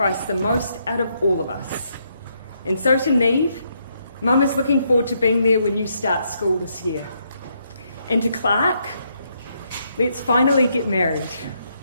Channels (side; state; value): both; inverted; correlation -0.76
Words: the most out of all of us. And so to Neve, Mum is looking forward to being there when you start school this year. And to Clark, let's finally get married.